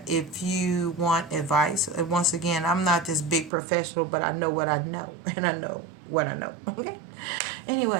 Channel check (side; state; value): left; drops out; at 3.5 s